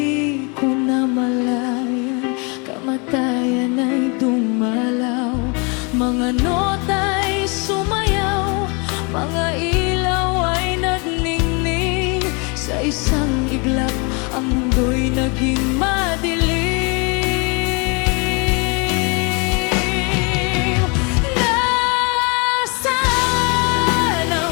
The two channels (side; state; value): right; quieter; 31.8 dB